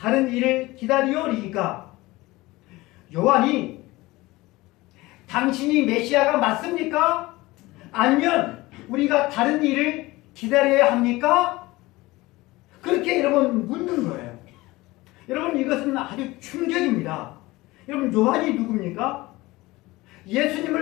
일을 기다리오리이까. 요한이 당신이 메시아가 맞습니까? 아니면 우리가 다른 일을 기다려야 합니까? 그렇게 여러분 묻는 거예요. 여러분, 이것은 아주 충격입니다. 여러분, 요한이 누굽니까?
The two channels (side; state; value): right; quieter; 20.2 dB